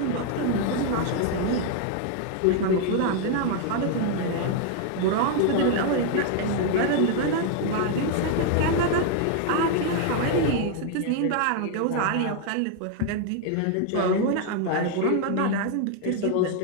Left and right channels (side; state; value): both; different; correlation 0.00